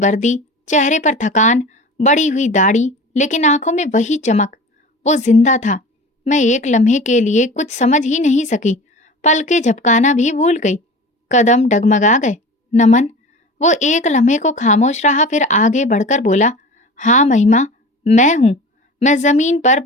चेहरे पर थकान, बड़ी हुई दाढ़ी, लेकिन आंखों में वही चमक। वो जिंदा था। मैं एक लम्हे के लिए कुछ समझ ही नहीं सकी। पलके झपकाना भी भूल गई। कदम डगमगा गए। नमन। वो एक लम्हे को खामोश रहा, फिर आगे बढ़कर बोला, हाँ महिमा, मैं हूं। मैं जमीन पर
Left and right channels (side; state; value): both; normal; correlation 0.36